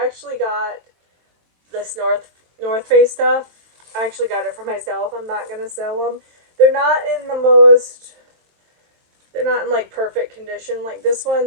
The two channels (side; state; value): left; late; 23 ms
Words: actually got this North Face stuff. I actually got it for myself. I'm not going to sell them. They're not in like perfect condition. Like this